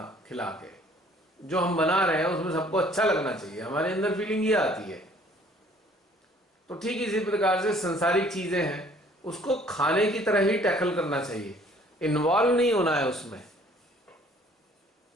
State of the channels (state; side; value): normal; both; correlation 0.57